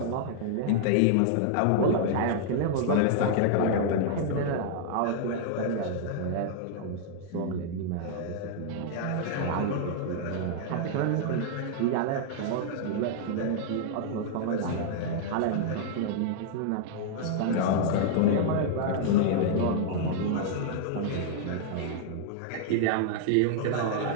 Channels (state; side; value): different; both; correlation -0.01